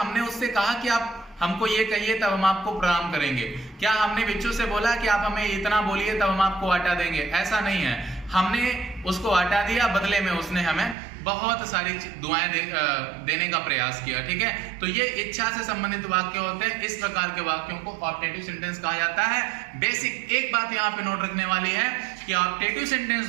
उससे कहा कि आप हमको ये कहिए तब हम आपको प्रणाम करेंगे? क्या हमने भिक्षु से बोला कि आप हमें इतना बोलिए तब हम आपको आटा देंगे? ऐसा नहीं है। हमने उसको आटा दिया, बदले में उसने हमें बहुत सारी दुआएं देने का प्रयास किया, ठीक है। तो ये इच्छा से संबंधित वाक्य होते हैं। इस प्रकार के वाक्यों को ऑप्टेटिव सेंटेंस कहा जाता है। बेसिक एक बात यहाँ पे नोट रखने वाली है कि ऑप्टेटिव सेंटेंस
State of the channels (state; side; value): drops out; left; at 11.0 s